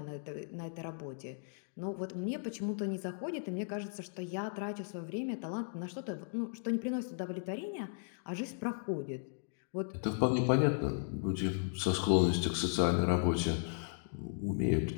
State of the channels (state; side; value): silent; right; digital silence